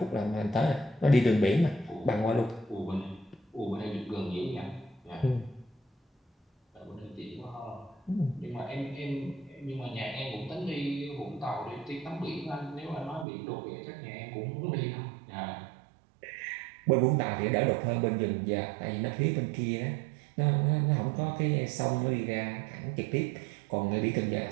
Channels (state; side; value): drops out; left; at 13.2 s